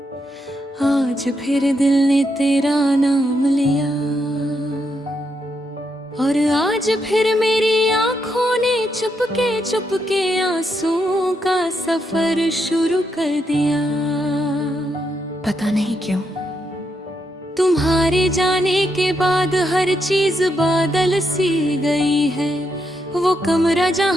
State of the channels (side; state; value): both; normal; correlation 0.80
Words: आज फिर दिल ने तेरा नाम लिया, और आज फिर मेरी आंखों ने चुपके चुपके आंसुओं का सफर शुरू कर दिया। पता नहीं क्यों तुम्हारे जाने के बाद हर चीज बादल सी गई है। वो कमरा